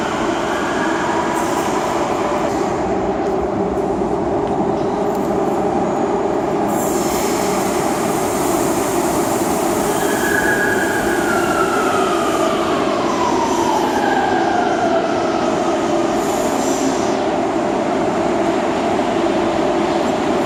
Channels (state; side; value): identical; both; correlation 1.00